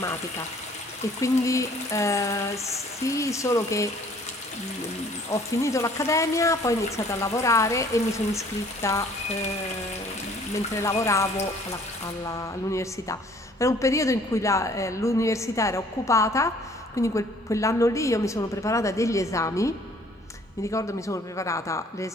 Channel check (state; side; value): normal; both; correlation 0.56